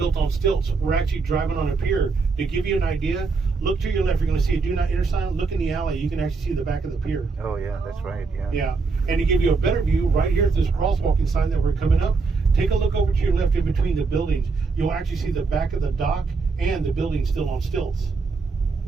on stilts. We're actually driving on a pier. To give you an idea, look to your left. You're going to see a do not enter sign. Look in the alley. You can actually see the back of the pier. Oh yeah, that's right. Yeah. Yeah. And to give you a better view, right here at this crosswalking sign that we're coming up, take a look over to your left in between the buildings. You'll actually see the back of the dock and the building still on stilts.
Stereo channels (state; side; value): quieter; left; 4.3 dB